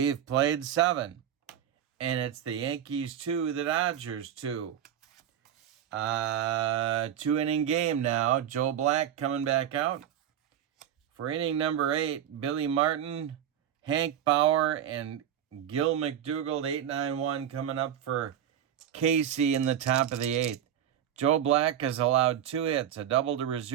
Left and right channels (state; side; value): quieter; left; 10.0 dB